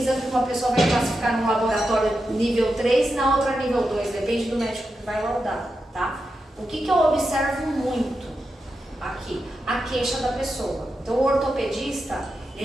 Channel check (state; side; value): normal; both; correlation 0.88